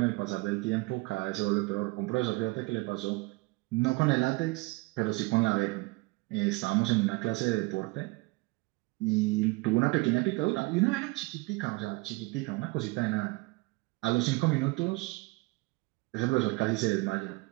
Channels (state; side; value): quieter; left; 25.1 dB